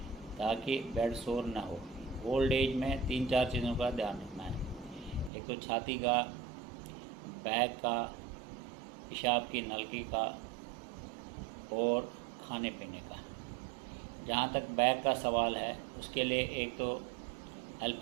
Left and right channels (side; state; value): left; drops out; at 5.3 s